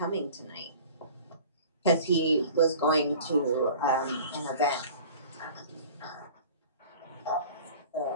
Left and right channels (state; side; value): inverted; both; correlation -0.43